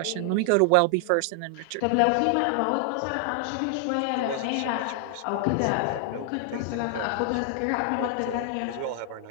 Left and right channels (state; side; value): different; both; correlation 0.00